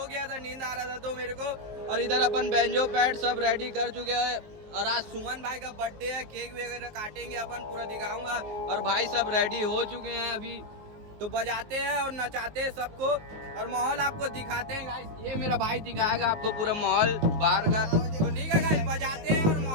गया था, नींद आ रहा था तो मेरे को। और इधर अपन बैंजो पैड सब रेडी कर चुके हैं। और आज सुमन भाई का बर्थडे है, केक वगैरह काटेंगे अपन, पूरा दिखाऊंगा। और भाई सब रेडी हो चुके हैं अभी, तो बजाते हैं और नचाते हैं सबको, और माहौल आपको दिखाते हैं गाइस। ये मेरा भाई दिखाएगा आपको पूरा माहौल बाहर का। तो ठीक है गाइस, बजाते हैं और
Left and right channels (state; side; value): late; left; 19 ms